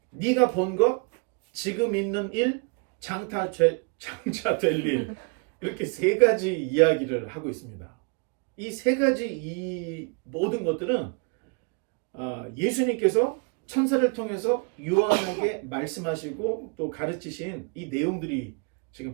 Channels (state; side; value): quieter; left; 34.9 dB